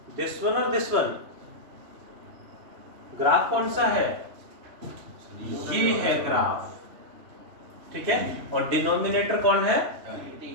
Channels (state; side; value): late; left; 3.0 ms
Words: और दिस वन। ग्राफ कौन सा है? ये है ग्राफ, ठीक है। और डिनोमिनेटर कौन है?